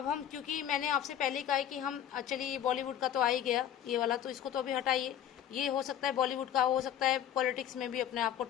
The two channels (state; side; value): quieter; right; 10.4 dB